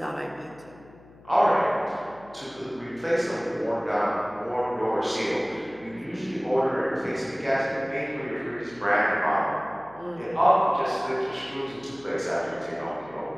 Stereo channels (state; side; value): noise; left; hum, 23 dB below the sound